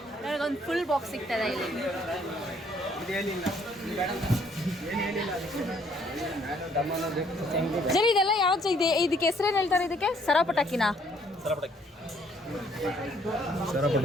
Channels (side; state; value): both; normal; correlation 0.63